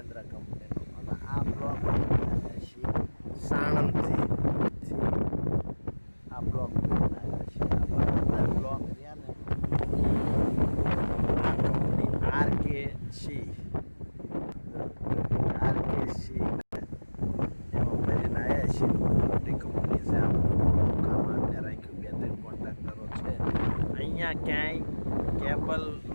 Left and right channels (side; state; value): both; inverted; correlation -1.00